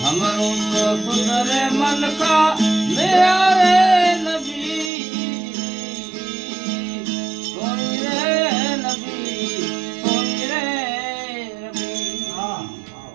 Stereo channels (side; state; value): left; drops out; at 4.9 s